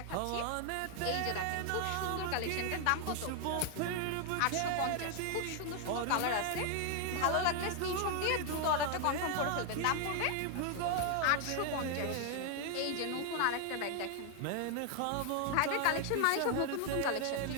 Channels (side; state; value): both; different; correlation 0.00